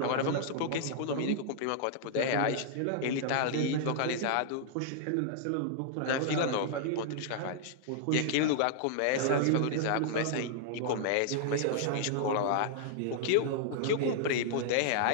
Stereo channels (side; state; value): both; different; correlation -0.01